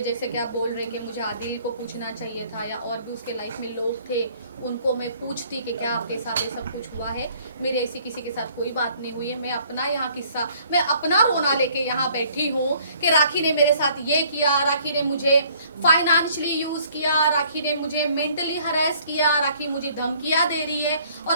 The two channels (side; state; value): both; inverted; correlation -0.59